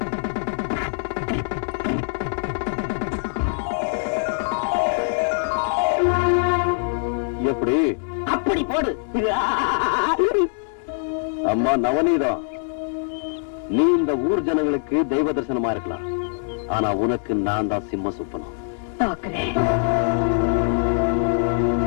எப்படி? அப்படி போடு. அம்மா நவநீதம், நீ இந்த ஊர் ஜனங்களுக்கு தெய்வ தரிசனமா இருக்கலாம், ஆனா உனக்கு நான் தான் சிம்ம சுப்பனம்.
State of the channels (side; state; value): right; silent; digital silence